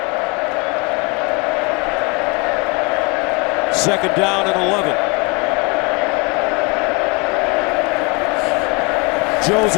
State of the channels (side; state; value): right; quieter; 29.7 dB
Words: Second down and 11.